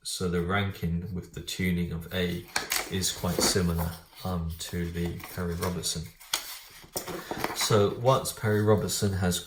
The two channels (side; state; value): both; identical; correlation 1.00